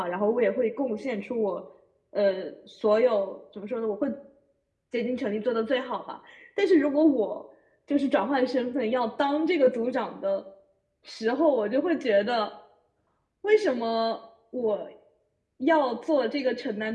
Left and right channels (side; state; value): both; identical; correlation 1.00